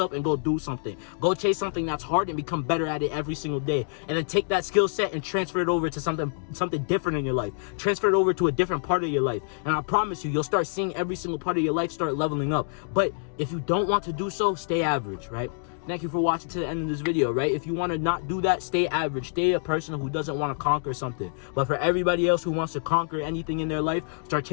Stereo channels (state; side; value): silent; right; digital silence